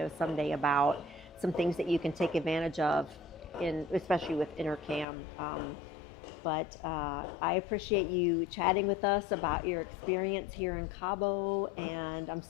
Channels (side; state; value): right; drops out; at 5.1 s